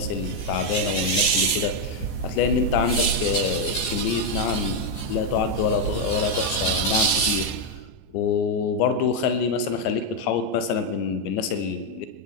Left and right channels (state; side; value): late; right; 15 ms